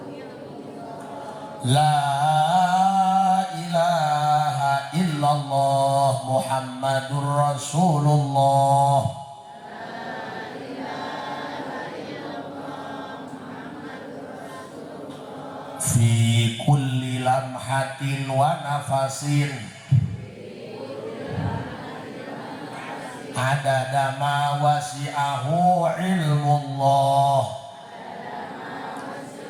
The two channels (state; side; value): identical; both; correlation 1.00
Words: la ilaha illallah Muhammadur Rasulullah fi kulli lamhatin wa nafasin adada ma wasi'ahu ilmullah